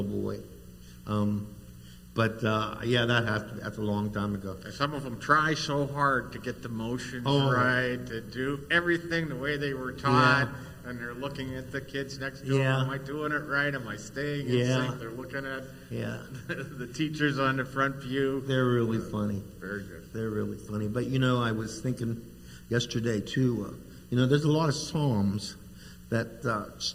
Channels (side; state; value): both; identical; correlation 1.00